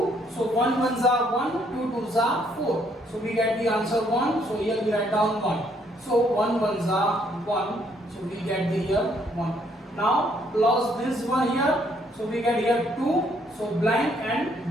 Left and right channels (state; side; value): normal; both; correlation 0.68